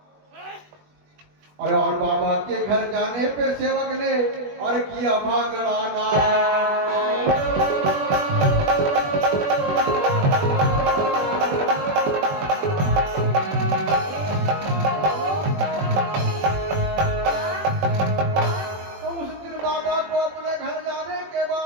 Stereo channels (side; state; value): left; late; 20 ms